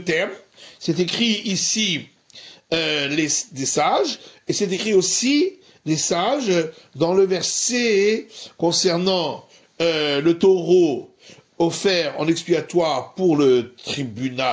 C'est écrit ici des sages, et c'est écrit aussi des sages dans le verset concernant le taureau offert en expiatoire pour le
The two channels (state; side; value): identical; both; correlation 1.00